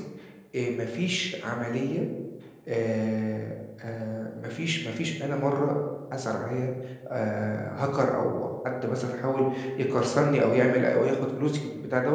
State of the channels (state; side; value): identical; both; correlation 1.00